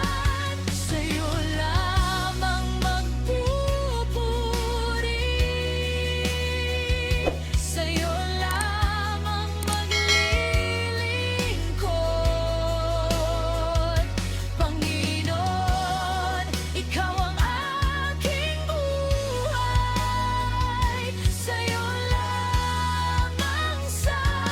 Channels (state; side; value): identical; both; correlation 1.00